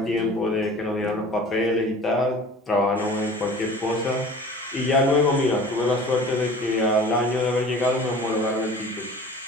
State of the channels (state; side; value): normal; both; correlation 0.43